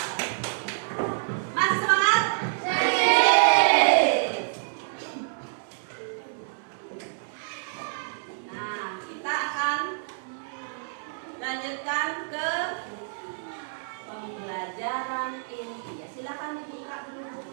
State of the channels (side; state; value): left; silent; digital silence